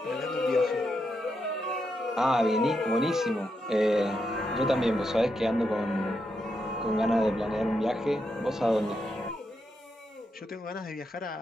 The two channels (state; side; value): normal; both; correlation 0.83